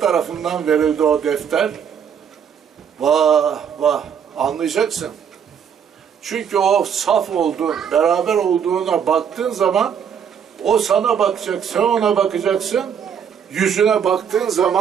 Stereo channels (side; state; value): left; quieter; 7.7 dB